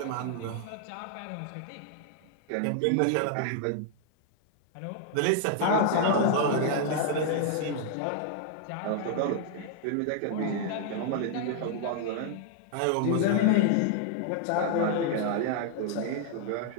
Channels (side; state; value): both; different; correlation 0.00